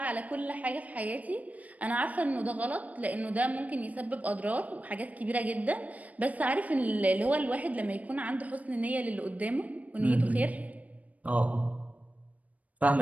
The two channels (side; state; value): left; late; 0.071 ms